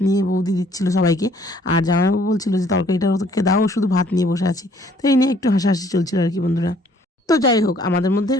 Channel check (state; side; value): normal; both; correlation 0.61